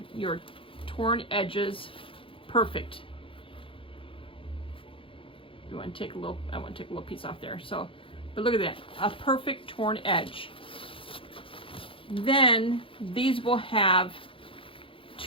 torn edges perfect. You want to take a little, I want to take a little piece off there. So, but look at that, a perfect torn edge. Then these will have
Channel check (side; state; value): right; late; 0.26 ms